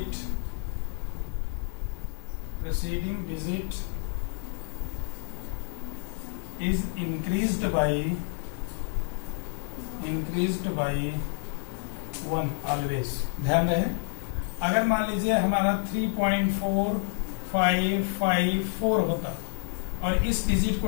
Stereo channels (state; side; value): silent; right; 59 dB below the other